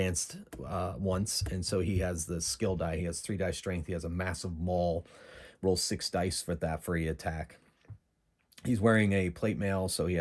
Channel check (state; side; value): identical; both; correlation 1.00